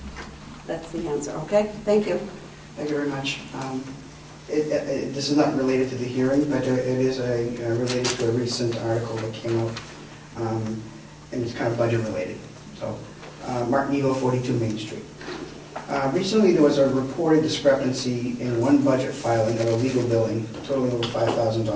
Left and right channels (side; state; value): both; identical; correlation 1.00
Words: that's the answer, okay? Thank you. Thank you very much. This is not related to the hearing, but it is related to a recent article that came out, and it's kind of budget related. So, Martin Eagle, 42 Main Street. Recently, there was a reported discrepancy in one budget filing of a legal billing totaling over